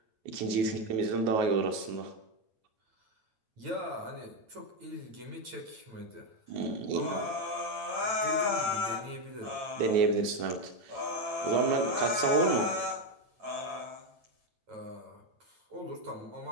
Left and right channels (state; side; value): late; left; 8.9 ms